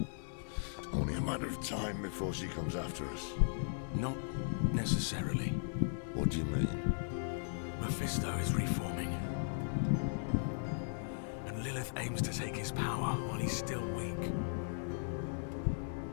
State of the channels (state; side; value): silent; right; digital silence